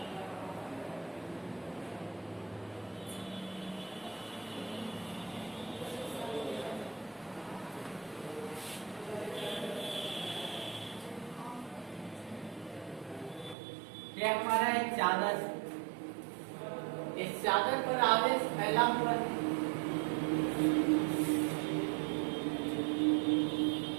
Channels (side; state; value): left; drops out; at 13.6 s